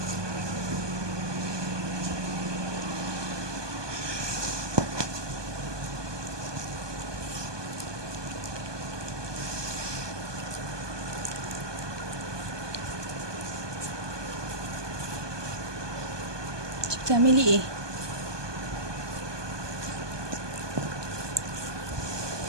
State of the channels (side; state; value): left; late; 1.2 ms